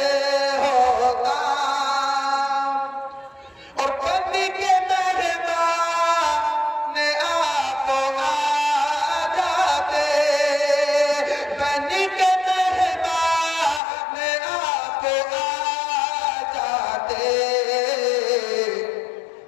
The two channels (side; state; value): right; drops out; at 13.8 s